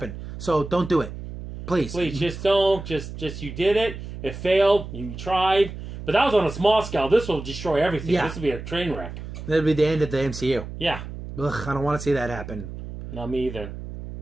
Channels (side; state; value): right; noise; hum, 10 dB below the sound